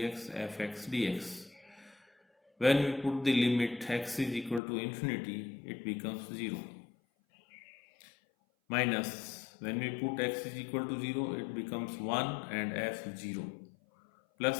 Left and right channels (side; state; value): right; drops out; at 4.6 s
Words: fx dx. When we put the limit x is equal to infinity, it becomes 0. Minus, when we put x is equal to 0, it becomes 1 and f0